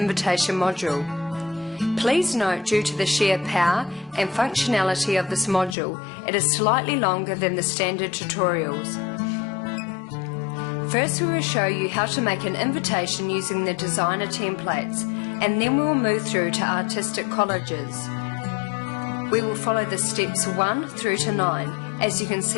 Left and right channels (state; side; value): drops out; right; at 5.8 s